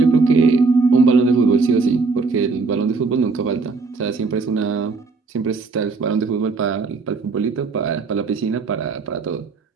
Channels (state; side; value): quieter; left; 4.2 dB